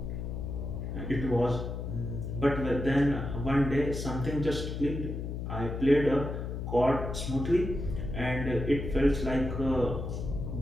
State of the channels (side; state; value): left; noise; hum, 5 dB below the sound